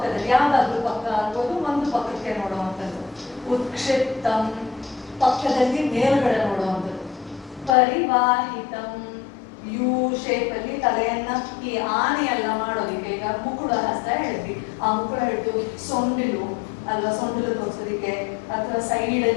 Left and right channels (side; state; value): right; drops out; at 7.8 s